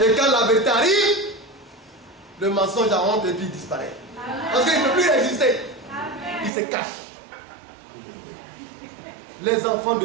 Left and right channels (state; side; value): drops out; left; at 6.5 s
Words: quand la vérité arrive, le mensonge a honte et puis il disparaît. Amen. Parce qu'il ne peut plus résister. Amen. Il se cache. Les enfants